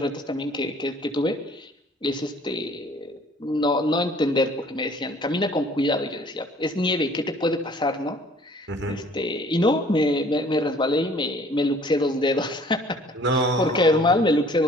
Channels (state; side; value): normal; both; correlation 0.55